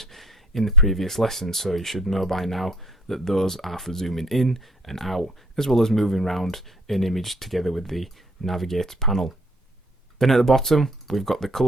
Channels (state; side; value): normal; both; correlation 0.58